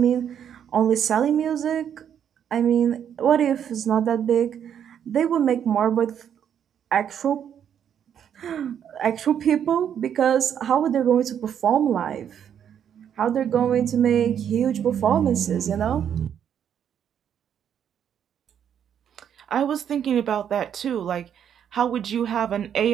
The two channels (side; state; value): left; quieter; 8.9 dB